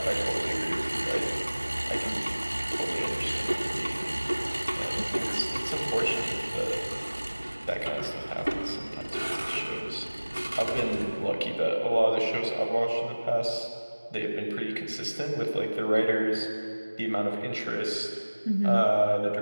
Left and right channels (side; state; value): both; inverted; correlation -1.00